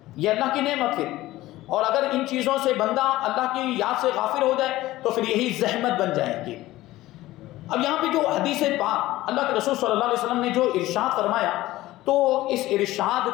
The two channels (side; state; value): right; quieter; 16.8 dB